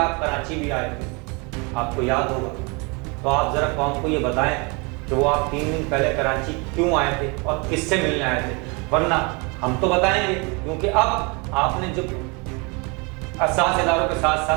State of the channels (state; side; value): quieter; left; 30.1 dB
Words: کراچی بھی آئے تھے، آپ کو یاد ہوگا۔ تو آپ ذرا قوم کو یہ بتائیں کہ وہ آپ 3 دن پہلے کراچی کیوں آئے تھے اور کس سے ملنے آئے تھے، ورنہ ہم تو بتائیں گے، کیونکہ اب آپ نے جو اساس اداروں کے ساتھ